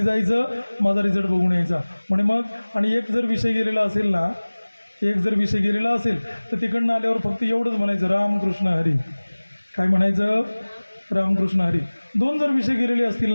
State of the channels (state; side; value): inverted; both; correlation -1.00